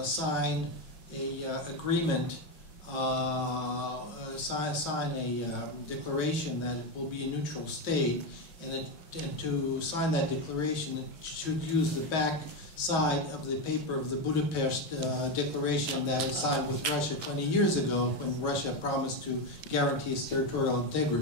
sign a agreement, sign a declaration that it will be a neutral state, and to sign that declaration, it should use the back side of the paper of the Budapest Declaration that was signed with Russia 20 years ago, when Russia promised to guarantee its territorial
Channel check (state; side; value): late; right; 5.8 ms